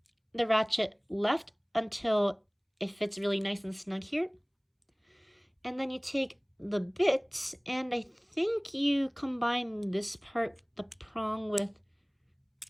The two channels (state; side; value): identical; both; correlation 1.00